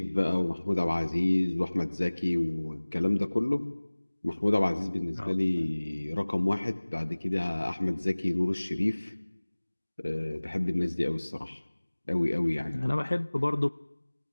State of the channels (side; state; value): both; inverted; correlation -1.00